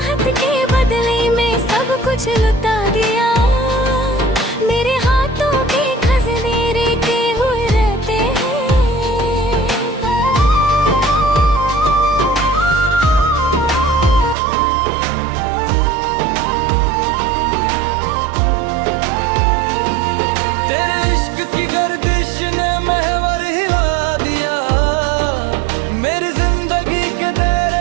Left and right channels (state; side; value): drops out; left; at 14.4 s